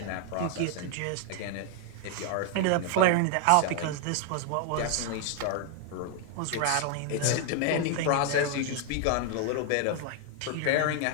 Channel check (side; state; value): both; different; correlation 0.00